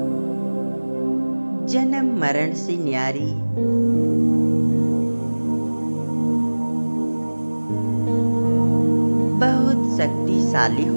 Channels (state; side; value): inverted; both; correlation -1.00